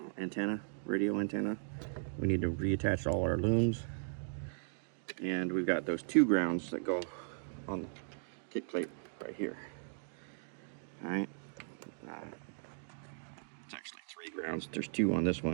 antenna, radio antenna. We need to reattach all our looms. And we've got those 2 grounds that go on the kick plate right here. All right. It's actually 3 grounds. There's 2 on this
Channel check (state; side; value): silent; left; digital silence